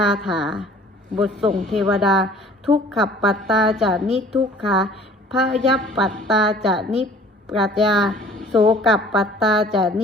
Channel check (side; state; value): both; normal; correlation 0.51